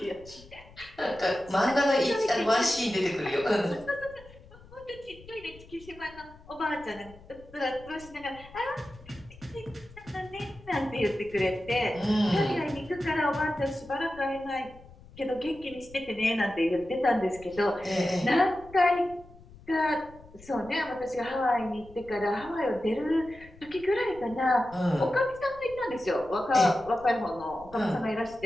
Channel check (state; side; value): noise; left; rumble, 21 dB below the sound